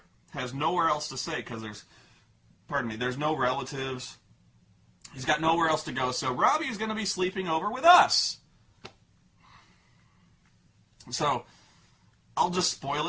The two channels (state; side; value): identical; both; correlation 1.00